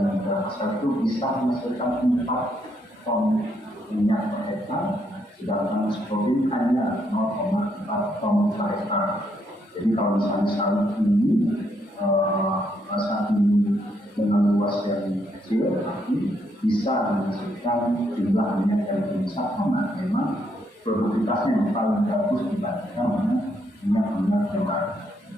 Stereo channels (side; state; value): both; normal; correlation 0.75